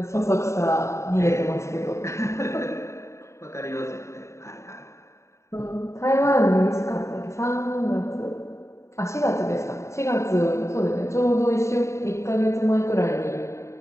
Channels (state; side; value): late; right; 0.14 ms